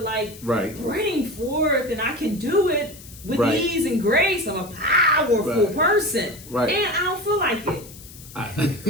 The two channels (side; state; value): left; noise; hiss, 18 dB below the sound